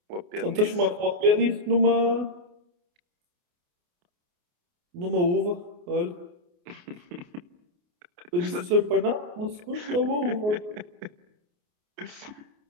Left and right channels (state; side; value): late; left; 28 ms